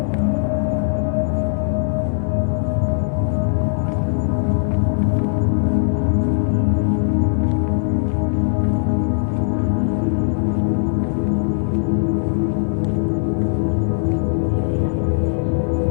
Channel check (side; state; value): right; silent; digital silence